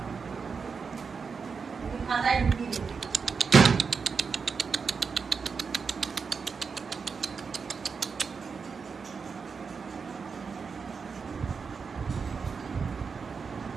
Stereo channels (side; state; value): left; quieter; 5.4 dB